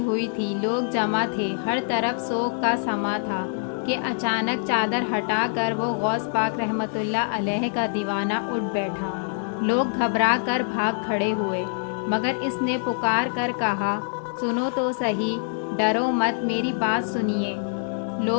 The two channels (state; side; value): silent; right; 62 dB below the other